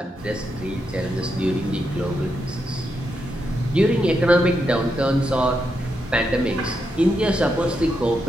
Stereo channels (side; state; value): both; normal; correlation 0.83